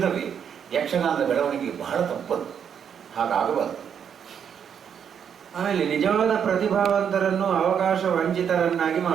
ಯಕ್ಷಗಾನದ ಬೆಳವಣಿಗೆ ಬಹಳ ತಪ್ಪದು. ಹಾಗಾಗಬಾರದು. ಆಮೇಲೆ ನಿಜವಾದ ಪ್ರತಿಭಾವಂತರನ್ನು ಅವಕಾಶ ವಂಚಿತರನ್ನಾಗಿ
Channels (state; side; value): quieter; left; 7.9 dB